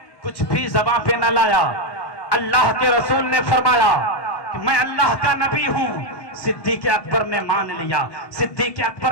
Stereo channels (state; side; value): late; right; 1.2 ms